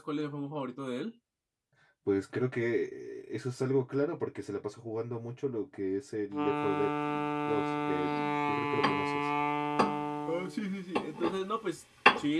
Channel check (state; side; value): identical; both; correlation 1.00